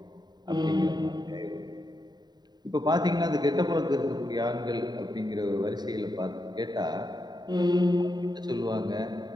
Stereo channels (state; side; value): late; left; 0.20 ms